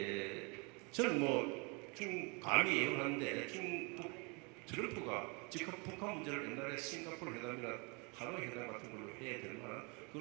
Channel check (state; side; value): quieter; left; 31.3 dB